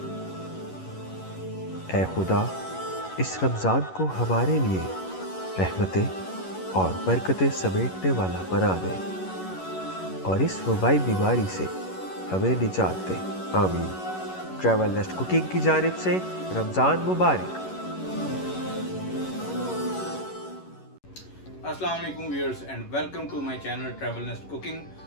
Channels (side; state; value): right; late; 11 ms